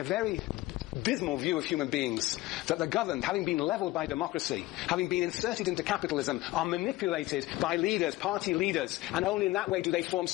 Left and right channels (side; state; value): right; quieter; 18.3 dB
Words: a very dismal view of human beings, that the governed, having been leveled by democracy, having been inserted into capitalism, are manipulated by leaders, party leaders, and only in that way do they form